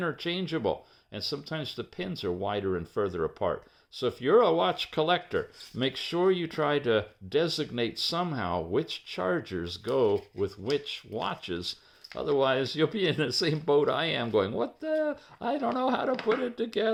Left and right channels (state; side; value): identical; both; correlation 1.00